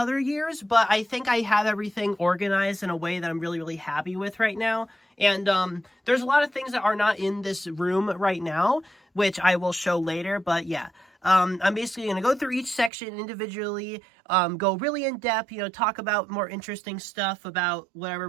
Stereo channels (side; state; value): left; drops out; at 12.9 s